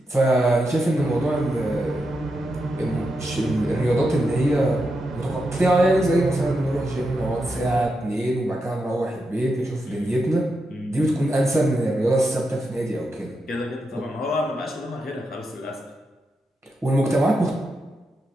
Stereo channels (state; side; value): normal; both; correlation 0.86